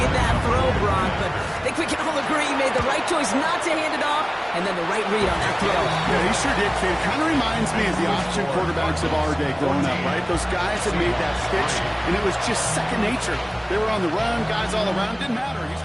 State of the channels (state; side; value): identical; both; correlation 1.00